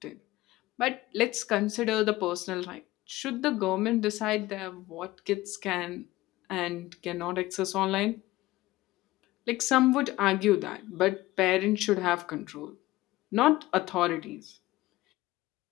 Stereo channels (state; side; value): quieter; right; 18.0 dB